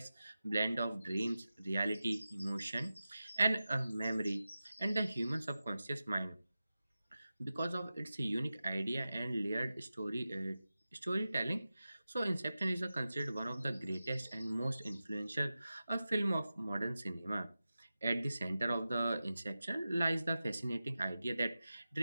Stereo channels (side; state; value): both; inverted; correlation -0.94